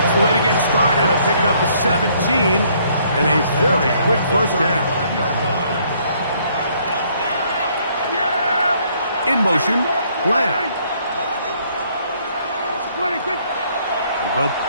the way to get started. A pickup of 17 and a very quick first down. In motion, Lamb. We'll go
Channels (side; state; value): both; inverted; correlation -0.65